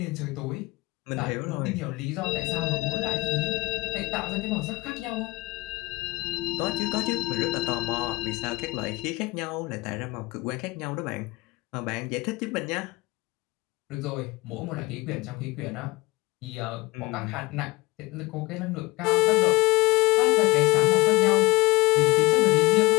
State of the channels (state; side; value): quieter; right; 22.1 dB